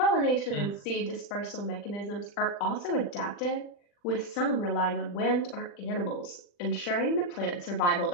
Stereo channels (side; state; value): right; late; 40 ms